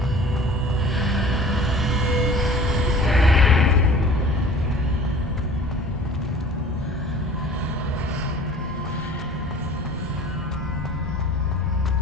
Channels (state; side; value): normal; both; correlation 0.46